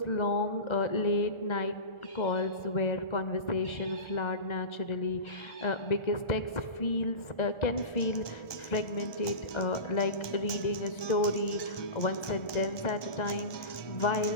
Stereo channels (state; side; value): late; right; 1.2 ms